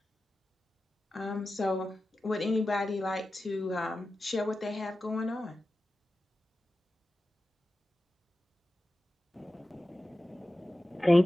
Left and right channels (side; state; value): both; normal; correlation 0.94